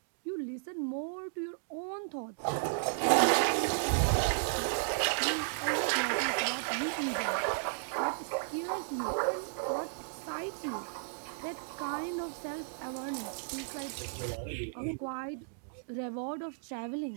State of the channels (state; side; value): silent; left; digital silence